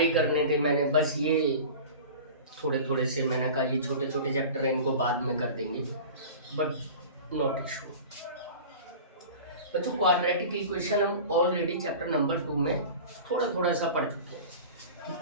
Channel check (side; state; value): both; inverted; correlation -0.36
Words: ही करने थे मैंने, बस ये थोड़े थोड़े से मैंने कहा ये छोटे छोटे चैप्टर हैं, इनको बाद में कर देंगे, बट नॉट इशू। बच्चों क्वाड्रेटिक इक्वेशन हम ऑलरेडी चैप्टर नंबर 2 में थोड़ा थोड़ा सा पढ़ चुके हैं कि